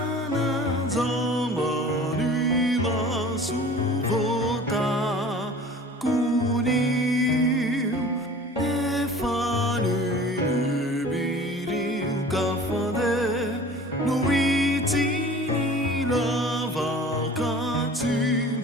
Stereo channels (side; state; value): both; normal; correlation 0.44